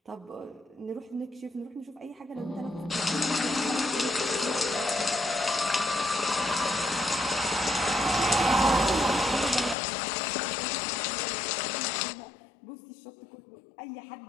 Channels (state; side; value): drops out; right; at 9.8 s